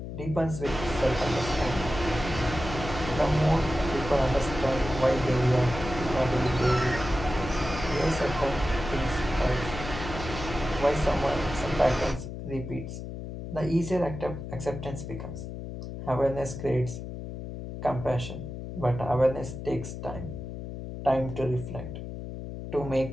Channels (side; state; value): left; noise; hum, 8 dB below the sound